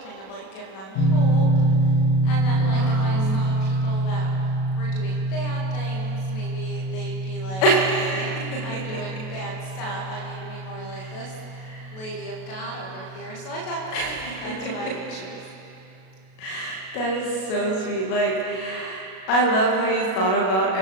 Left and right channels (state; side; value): late; right; 37 ms